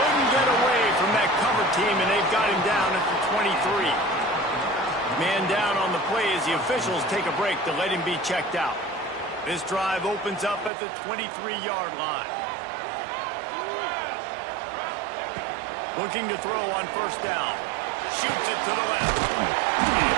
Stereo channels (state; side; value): drops out; left; at 10.7 s